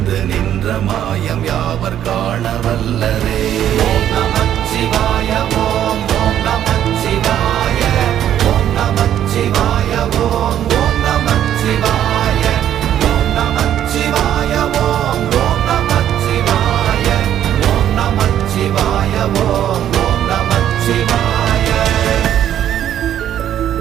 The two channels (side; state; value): left; quieter; 10.8 dB